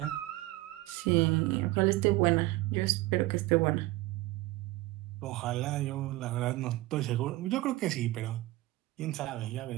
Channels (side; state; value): left; quieter; 18.5 dB